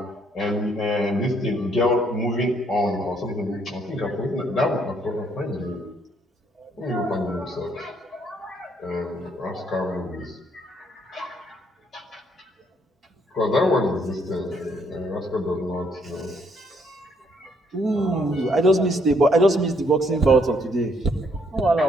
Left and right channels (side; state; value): both; normal; correlation 0.69